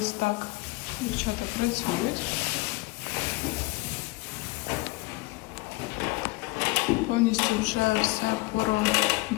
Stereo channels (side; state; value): right; quieter; 23.5 dB